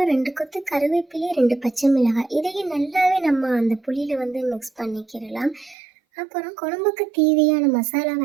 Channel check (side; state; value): left; drops out; at 5.8 s